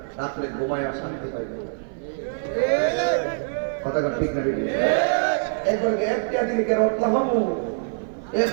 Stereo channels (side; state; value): left; silent; 56 dB below the other